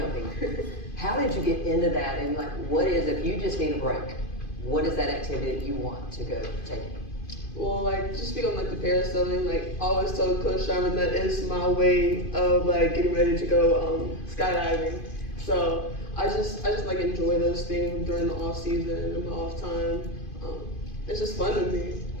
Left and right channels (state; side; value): late; right; 2.5 ms